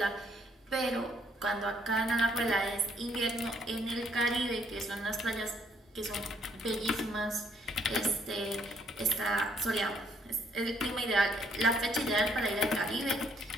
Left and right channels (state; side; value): normal; both; correlation 0.68